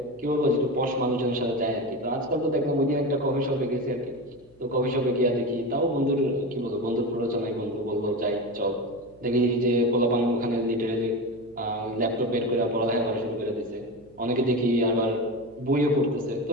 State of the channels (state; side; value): noise; left; hum, 29 dB below the sound